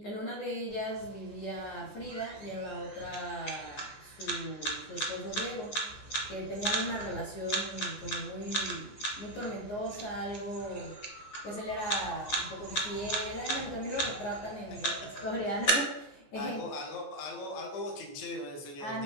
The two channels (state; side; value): late; right; 14 ms